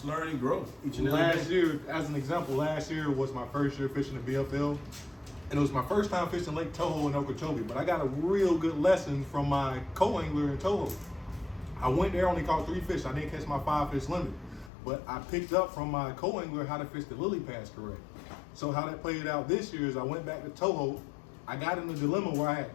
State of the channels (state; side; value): drops out; right; at 14.7 s